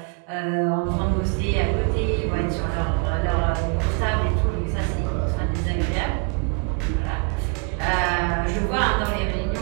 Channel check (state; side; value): quieter; left; 34.9 dB